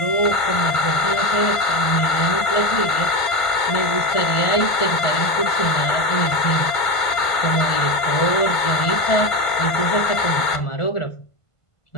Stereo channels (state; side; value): late; right; 1.5 ms